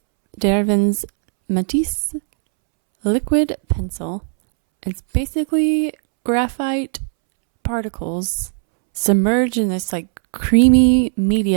Derivan's Matisse Liquid Pencil. It's basically graphite particles submerged in this like creamy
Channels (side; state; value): left; silent; 67 dB below the other